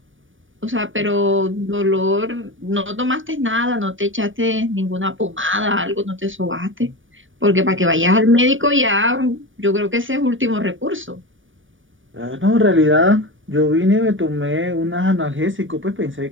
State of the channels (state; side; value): late; left; 0.57 ms